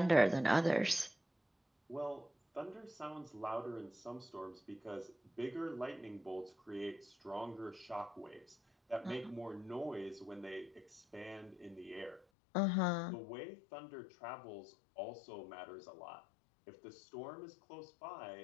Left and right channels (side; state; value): right; drops out; at 12.2 s